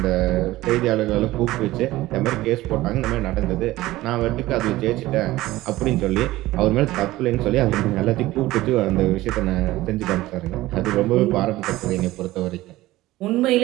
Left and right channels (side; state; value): left; quieter; 17.2 dB